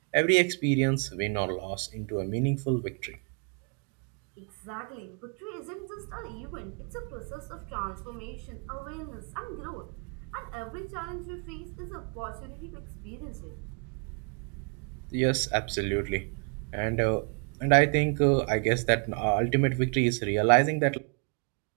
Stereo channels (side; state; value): left; quieter; 39.1 dB